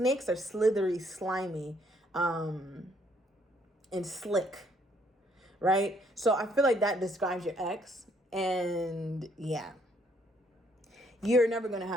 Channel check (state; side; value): normal; both; correlation 0.67